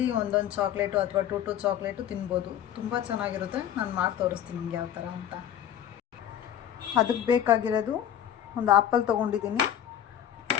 ಒಂದೊಂದು ಚಾಕ್ಲೇಟು ಅಥವಾ ಟೂ ಚಾಕ್ಲೇಟು ತಿನ್ಬೋದು. ತುಂಬ ಚೆನ್ನಾಗಿರುತ್ತೆ. ನಾನು ಮಾಡಿ ತೋರಿಸ್ತೀನಿ ನಿಮ್ಗೆ ಯಾವ ಥರ ಅಂತ. ಅದಕ್ಕೆ ಬೇಕಾಗಿರೋದು, ಒಂದು ಆ್ಯಪಲ್ ತೊಗೊಂಡಿದ್ದೀನಿ,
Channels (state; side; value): quieter; right; 10.3 dB